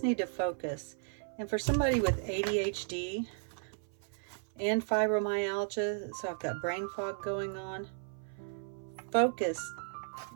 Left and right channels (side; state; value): left; silent; 55 dB below the other